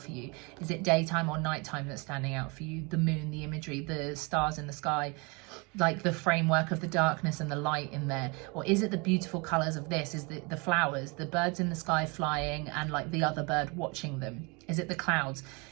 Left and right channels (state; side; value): quieter; left; 29.5 dB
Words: you? Is it daytime or nighttime that's standing out for you? The moon, the imagery, the stars in the sky, like the framework of the darkness and the light in there? Or is it the beautiful colors of this? Is the flowers, the birds in the sky flying and like the other bird watching them? Is it the clouds?